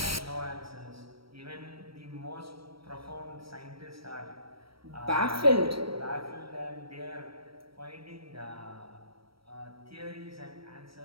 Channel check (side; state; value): left; late; 0.75 ms